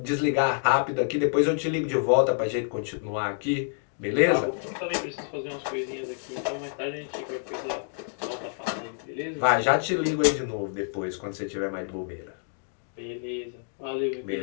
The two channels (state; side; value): silent; right; digital silence